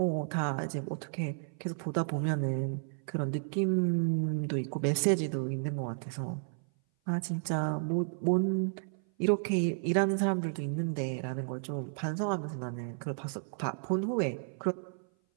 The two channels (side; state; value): left; silent; 55 dB below the other